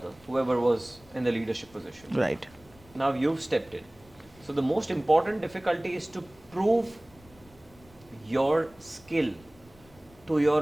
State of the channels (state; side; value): noise; left; rumble, 26 dB below the sound